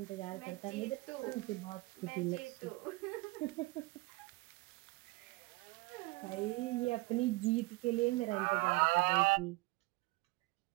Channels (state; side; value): quieter; left; 23.3 dB